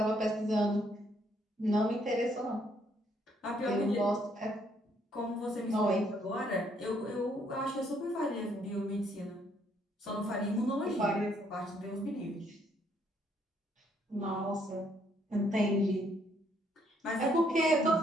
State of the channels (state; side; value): normal; both; correlation 0.69